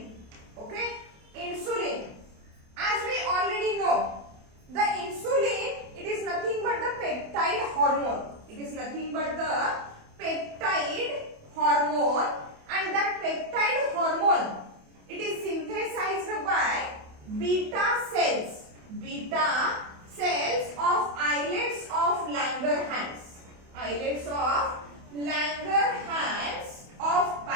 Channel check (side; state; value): left; late; 28 ms